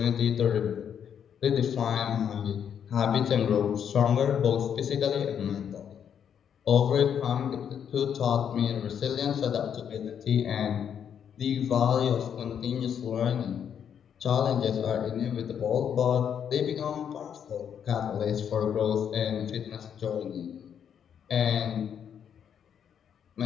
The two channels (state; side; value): quieter; right; 8.3 dB